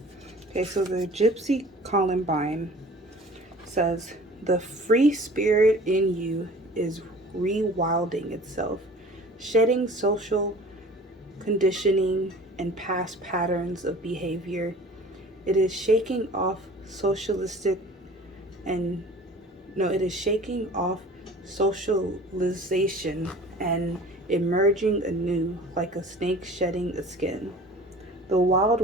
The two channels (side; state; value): both; normal; correlation 0.45